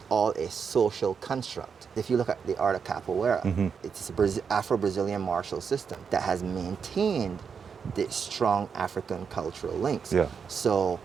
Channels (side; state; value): left; quieter; 6.3 dB